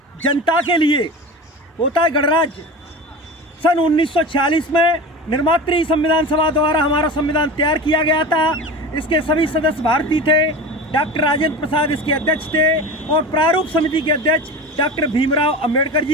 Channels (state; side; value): normal; both; correlation 0.31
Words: जनता के लिए होता है गणराज्य। सन 1946 में निर्मात्री संविधान सभा द्वारा हमारा संविधान तैयार किया गया था। इसके सभी सदस्य भारतीय थे। डॉक्टर राजेंद्र प्रसाद इसके अध्यक्ष थे और प्रारूप समिति के अध्यक्ष डॉक्टर भीमराव अंबेडकर